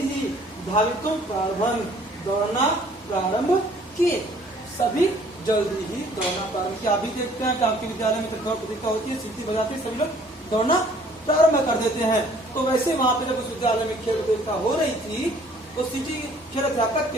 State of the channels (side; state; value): both; normal; correlation 0.57